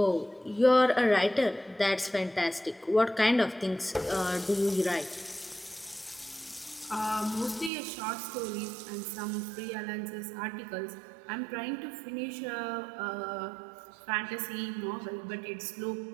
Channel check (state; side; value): drops out; left; at 7.7 s